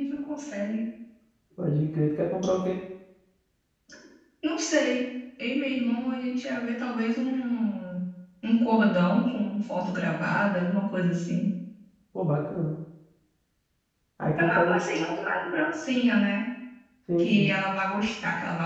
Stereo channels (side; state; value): both; identical; correlation 1.00